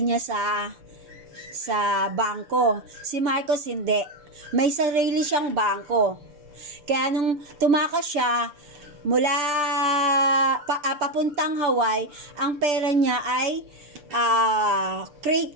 sa bangko. Si Marcos hindi. May sarili siyang bangko. Kaya nung tumakas siya mula papuntang Hawaii, ang pera niya ay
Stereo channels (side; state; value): left; late; 6.8 ms